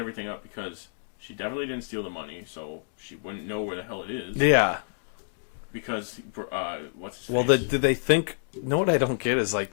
up because she definitely didn't steal the money, so she wouldn't know where the hell it is. Yeah. Because, what's his Well, face? did they think... No, what I don't get is, like,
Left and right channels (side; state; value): right; silent; digital silence